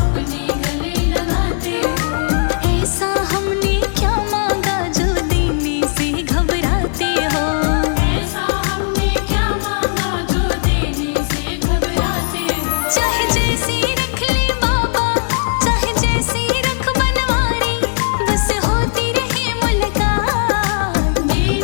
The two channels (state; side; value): silent; right; digital silence